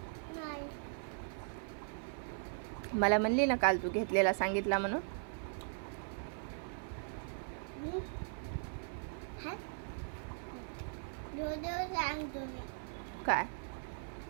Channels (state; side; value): silent; left; 52 dB below the other